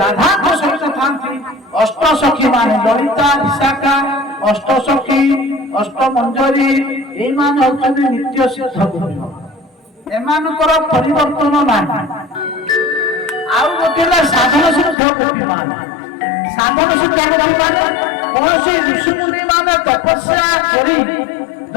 ରାଧାଙ୍କ ସହିତ ଥାନ୍ତି। ଅଷ୍ଟସଖୀ ମାନେ ଲଳିତା ବିଶାଖା ଅଷ୍ଟସଖୀ ଅଷ୍ଟମଞ୍ଜରୀ ଏଇମାନେ ହଉଛନ୍ତି ନିତ୍ୟ ସିଦ୍ଧ ଗୋପୀ। ଏମାନଙ୍କର ପରିବର୍ତ୍ତନ ନାହିଁ। ଆଉ ଗୋଟେ ହେଲା ସାଧନ ସିଦ୍ଧ ଗୋପୀ ମାନେ। ସାଧନ ସିଦ୍ଧ ଗୋପୀ ମାନେ କୌଣସି ଋଷିମୁନି ମାନେ ତପସ୍ୟା କରି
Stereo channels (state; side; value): drops out; right; at 15.0 s